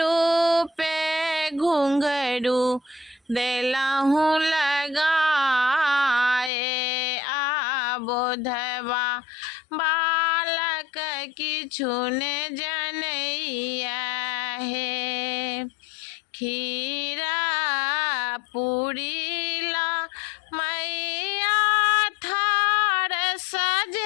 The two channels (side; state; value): right; drops out; at 6.5 s